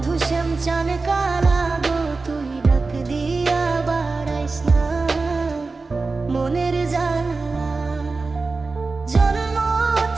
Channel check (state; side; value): quieter; left; 3.9 dB